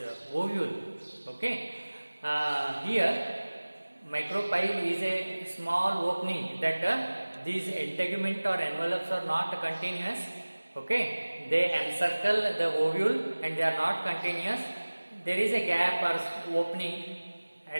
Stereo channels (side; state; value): both; inverted; correlation -1.00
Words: ovule. Okay, here micropyle is a small opening that these integument or envelopes are not continuous. Okay, they encircle the ovule and they are not continuous. There is a gap or opening